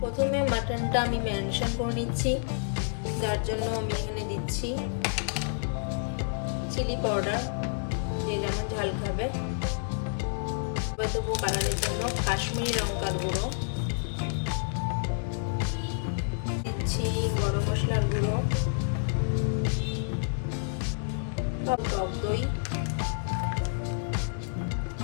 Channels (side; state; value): right; silent; digital silence